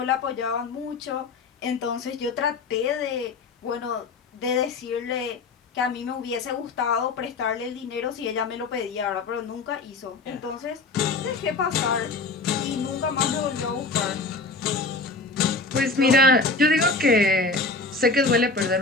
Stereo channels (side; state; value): right; quieter; 3.7 dB